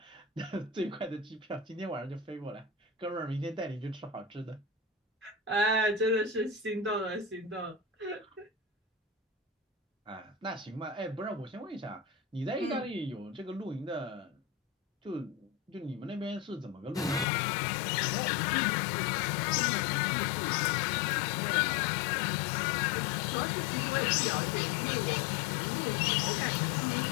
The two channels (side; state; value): right; drops out; at 17.2 s